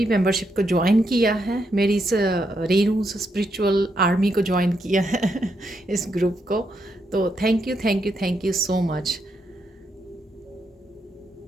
मेंबरशिप को ज्वाइन किया है, मेरी इस रेनू स्पिरिचुअल आर्मी को ज्वाइन किया है इस ग्रुप को, तो thank you thank you thank you so much.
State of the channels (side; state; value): both; normal; correlation 0.80